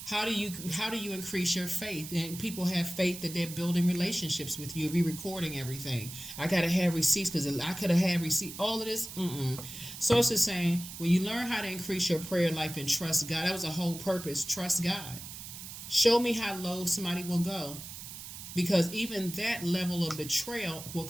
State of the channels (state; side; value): noise; right; hiss, 11 dB below the sound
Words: How do you increase your faith? And people have faith that they're building relationships with you. Be recording everything. I gotta have receipts because I could have had receipt. All of this. Source is saying when you learn how to increase your prayer life and trust God, that was the whole purpose. Trust God. Show me how low somebody will go, because even that level of betrayal will